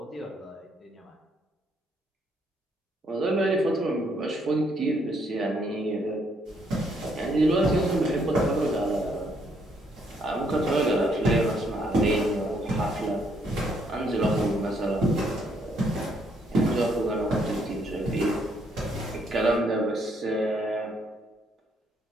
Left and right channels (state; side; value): normal; both; correlation 0.71